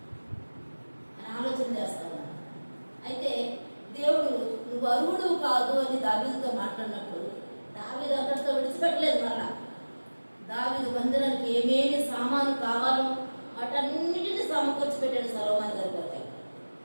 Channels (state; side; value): inverted; both; correlation -1.00